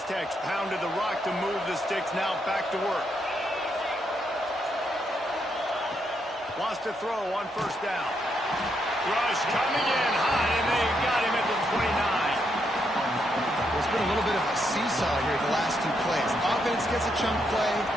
pounded the rock to move the sticks, now back to work. Wants to throw on first down. Rush coming in hot, and they got him at the 29. been a little bit of a seesaw here the last two plays. Offense gets a chunk play,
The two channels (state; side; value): normal; both; correlation 0.78